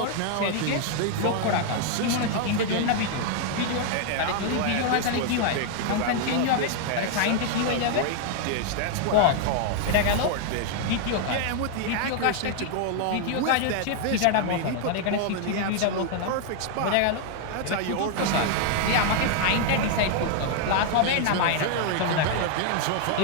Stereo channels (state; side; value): different; both; correlation 0.00